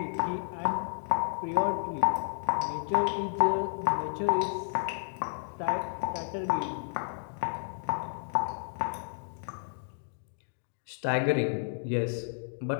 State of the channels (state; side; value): silent; right; digital silence